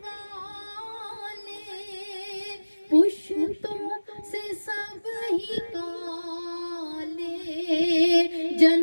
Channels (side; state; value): both; inverted; correlation -1.00